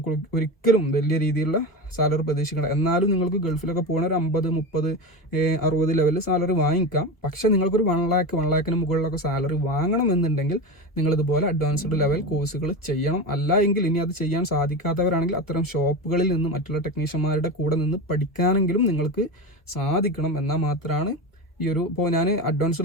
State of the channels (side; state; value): right; late; 1.1 ms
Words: ഒരിക്കലും വലിയ രീതിയിലുള്ള സാലറി പ്രതീക്ഷിക്കണം. എന്നാലും നിങ്ങൾക്ക് ഗൾഫിലൊക്കെ പോകുന്ന ഒരു 50, 30, 60 ലെവലിൽ സാലറി വാങ്ങിക്കാം. പക്ഷേ നിങ്ങൾക്കൊരു 1 ലാഖിന് മുകളിലൊക്കെ സാലറി വാങ്ങണമെന്നുണ്ടെങ്കിൽ നിങ്ങളിതുപോലെ അഡ്വാൻസ്ഡ് ലെവൽ കോഴ്സുകൾ ചെയ്യണം. അല്ല എങ്കിൽ ഇനി അത് ചെയ്യാൻ സാധിക്കാത്തവരാണെങ്കിൽ അത്തരം ഷോപ്പുകളിൽ നിന്ന് മറ്റുള്ള ടെക്നീഷ്യന്മാരുടെ കൂടെ നിന്ന് പഠിക്കാനെങ്കിലും നിങ്ങൾക്ക് സാധിക്കണം. എന്നാൽ മാത്രമാണ് ഈ ഒരു, ഇപ്പോൾ ഞാൻ